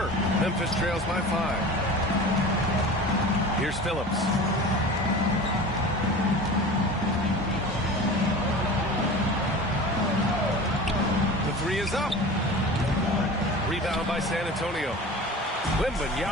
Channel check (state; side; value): normal; both; correlation 0.36